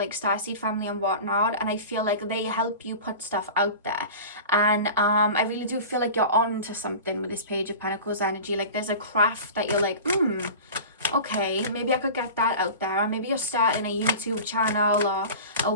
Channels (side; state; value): both; inverted; correlation -0.35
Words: Starseed family and whatnot, and I feel like they help you put stuff out there. And I really do feel like you're on to something with this Page of Pentacles energy. Like there's a craft that you're like, okay, maybe I could get that out there. Or maybe you're starting a YouTube channel or a